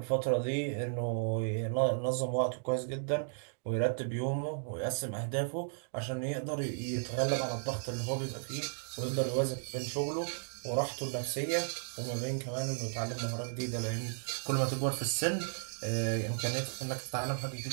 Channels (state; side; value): silent; left; digital silence